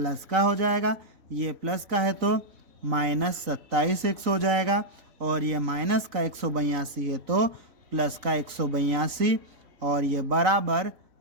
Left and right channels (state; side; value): late; left; 3.9 ms